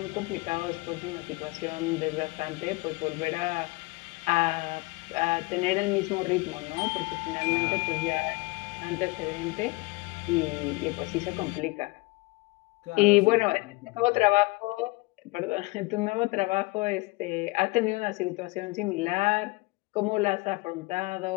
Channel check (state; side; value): quieter; right; 23.8 dB